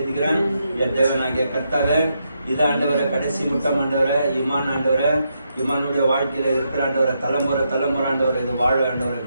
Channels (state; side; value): inverted; both; correlation -0.81